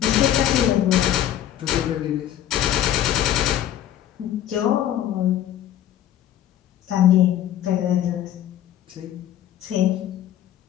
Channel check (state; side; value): quieter; right; 11.6 dB